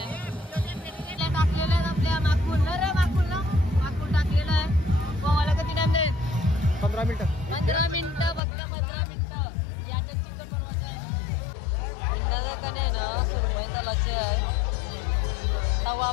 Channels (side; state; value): right; drops out; at 8.4 s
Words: टाकलेलं आहे आपल्या माकूल ना रे माकूल टाकलेलं आहे. पोवायला किती टाइम देईल? 15 मिनिटं. 15 मिनिटं फक्त 15 मिनिटं. याच्यात चिकन बनवायचं आहे. इंदाचा ना सुरमई तलाचे आहे. तवा